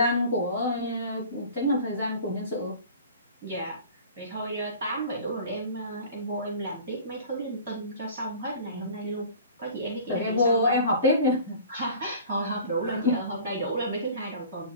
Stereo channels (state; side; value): inverted; both; correlation -0.43